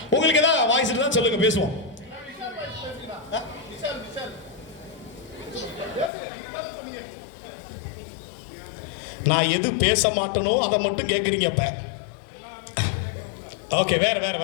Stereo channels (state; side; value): drops out; right; at 6.1 s